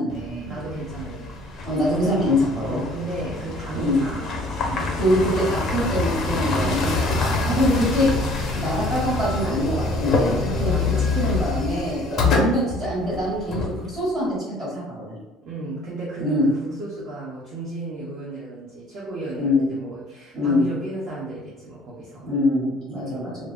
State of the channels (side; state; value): both; normal; correlation 0.55